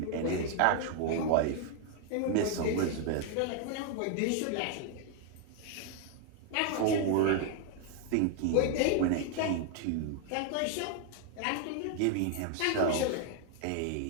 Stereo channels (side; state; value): both; different; correlation 0.00